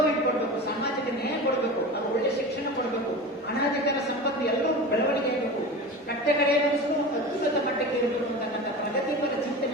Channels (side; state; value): both; normal; correlation 0.31